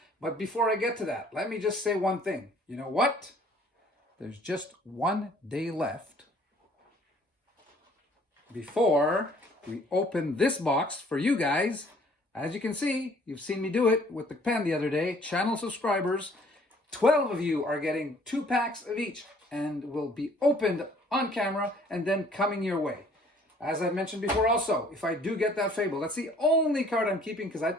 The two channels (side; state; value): both; normal; correlation 0.57